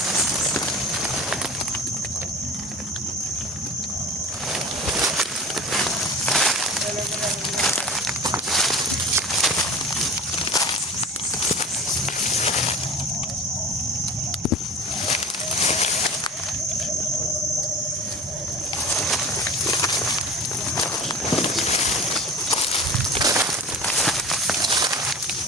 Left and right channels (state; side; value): normal; both; correlation 0.37